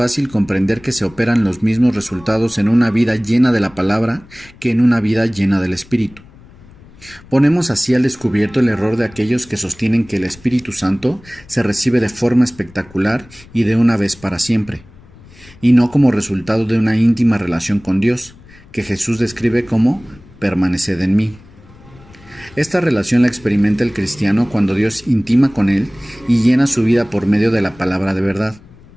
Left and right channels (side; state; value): left; noise; rumble, 24 dB below the sound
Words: comprender que se operan los mismos resultados en una vida llena de la palabra que en una vida llena del Espíritu. Ponemos así al descubierto el error de aquellos que sostienen que el Espíritu Santo se recibe de forma espectacular y de una vez para siempre, y no como resultado de una íntima relación con Dios, que Jesús describe como permaneced en mí. Esta relación la experimenta el cristiano cuando Dios intima con él y llena su vida por medio de la palabra de verdad.